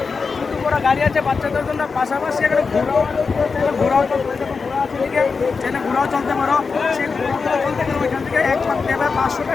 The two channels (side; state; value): right; quieter; 4.9 dB